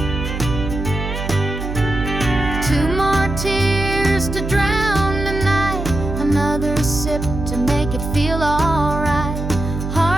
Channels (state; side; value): noise; right; hum, 5 dB below the sound